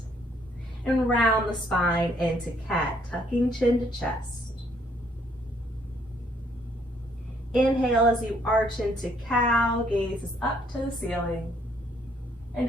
and round the spine into cat, tucking chin to chest. Inhale as you arch into cow, gazes up to the ceiling, and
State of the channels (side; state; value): both; normal; correlation 0.67